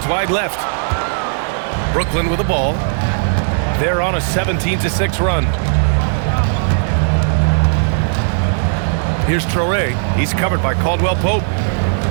wide left. Brooklyn with the ball. They're on a 17-6 run. Here's Traore. He's covered by Caldwell Pope.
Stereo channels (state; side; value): silent; left; digital silence